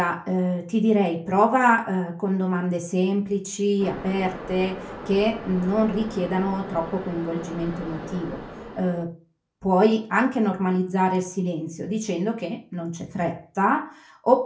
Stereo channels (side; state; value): both; identical; correlation 1.00